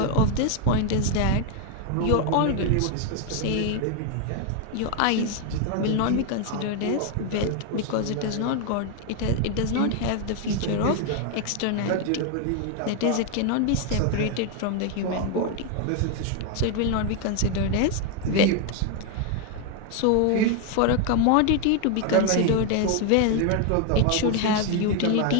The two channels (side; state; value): both; different; correlation 0.01